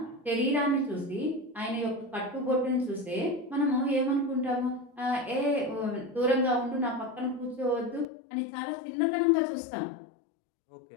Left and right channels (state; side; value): drops out; right; at 8.1 s